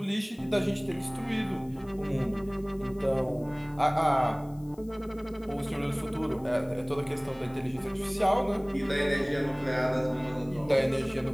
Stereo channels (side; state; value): left; noise; hiss, 28 dB below the sound